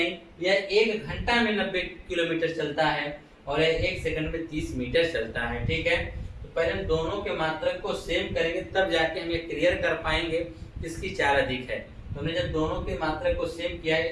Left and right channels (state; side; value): identical; both; correlation 1.00